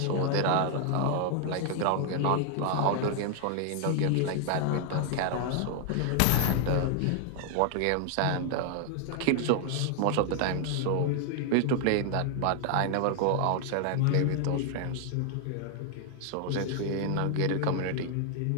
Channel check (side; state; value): both; different; correlation 0.00